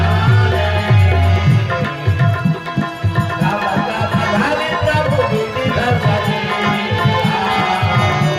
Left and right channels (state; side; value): identical; both; correlation 1.00